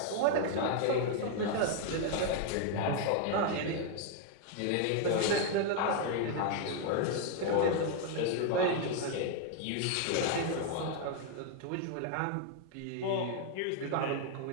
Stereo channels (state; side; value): different; both; correlation 0.00